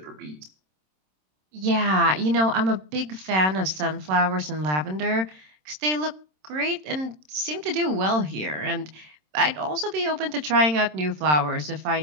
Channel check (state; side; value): late; left; 27 ms